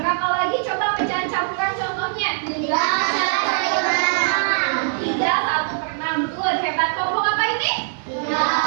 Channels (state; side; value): silent; left; digital silence